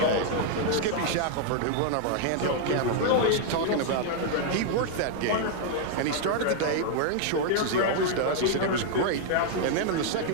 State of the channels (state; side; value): different; both; correlation 0.00